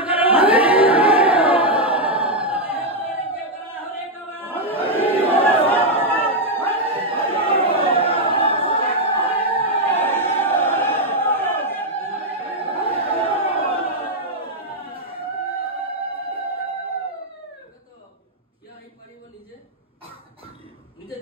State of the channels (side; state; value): both; normal; correlation 0.00